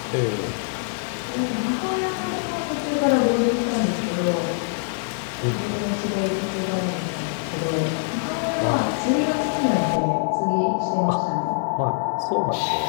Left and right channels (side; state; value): right; silent; digital silence